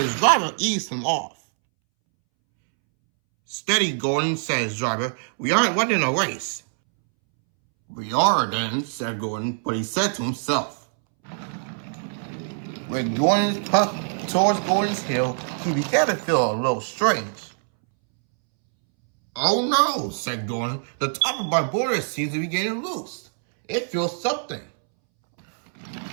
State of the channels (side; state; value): left; silent; 63 dB below the other